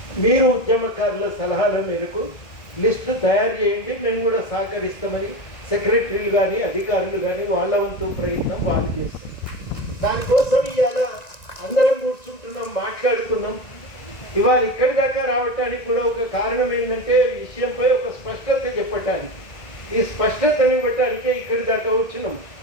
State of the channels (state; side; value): late; right; 1.9 ms